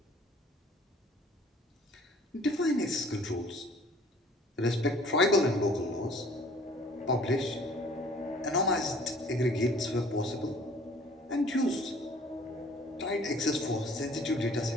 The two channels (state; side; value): normal; both; correlation 0.53